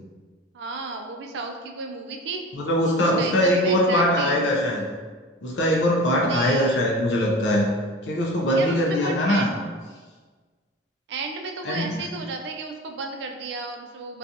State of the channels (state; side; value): normal; both; correlation 0.35